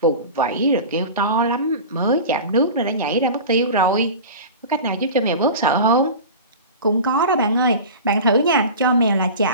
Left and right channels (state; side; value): inverted; both; correlation -0.33